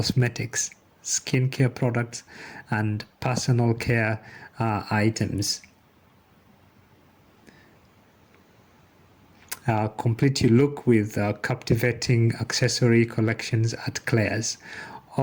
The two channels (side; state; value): both; identical; correlation 1.00